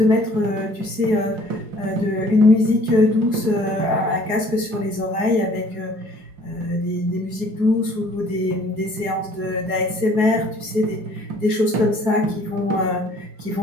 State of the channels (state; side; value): late; left; 4.8 ms